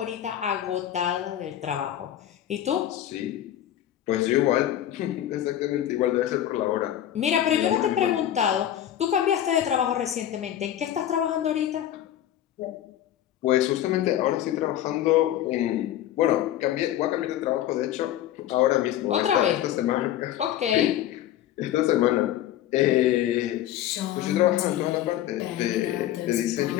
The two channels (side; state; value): right; quieter; 11.9 dB